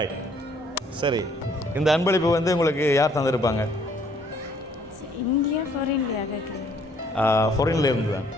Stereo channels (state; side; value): normal; both; correlation 0.63